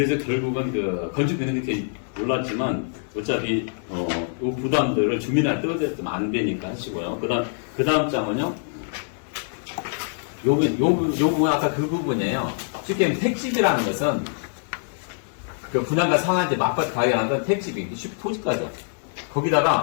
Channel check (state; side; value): silent; right; digital silence